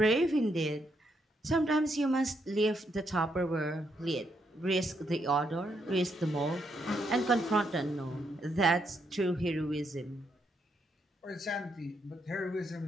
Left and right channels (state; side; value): normal; both; correlation 0.77